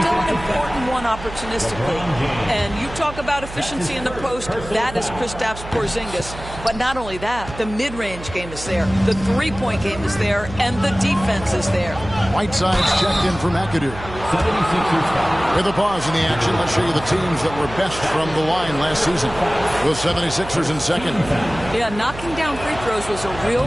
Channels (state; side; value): noise; right; hum, 13 dB below the sound